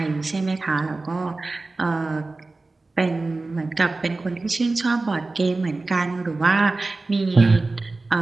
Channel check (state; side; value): quieter; left; 3.4 dB